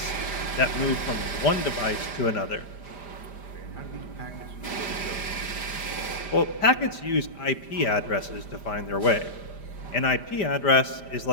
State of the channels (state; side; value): late; right; 5.0 ms